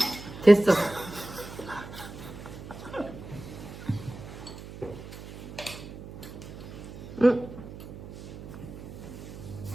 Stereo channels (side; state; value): right; noise; hum, 13 dB below the sound